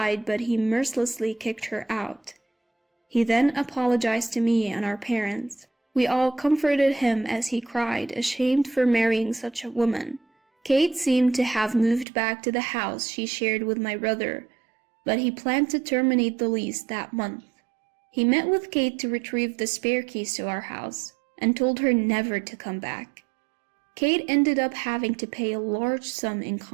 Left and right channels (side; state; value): left; drops out; at 12.1 s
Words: but he mercilessly kicked her out. He then apologized to me and our parents. We all comforted him as he cried, ashamed for marrying such a woman. Kate seemed to have moved back to the house she shared with my brother, but he planned to terminate the lease that month. He met with Kate to retrieve the spare keys to our house and told her never to come back. Kate ended up having to pay a large sum in